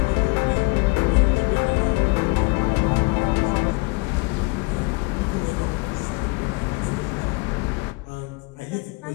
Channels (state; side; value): quieter; right; 27.6 dB